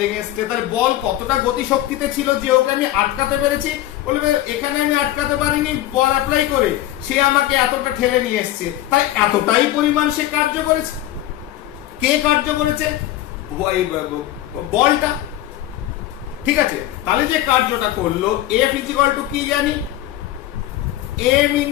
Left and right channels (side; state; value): right; quieter; 14.1 dB